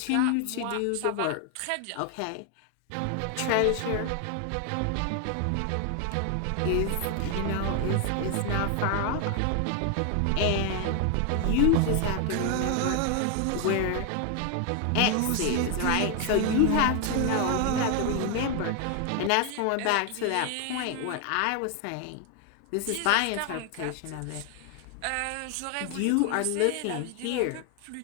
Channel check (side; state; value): both; different; correlation 0.01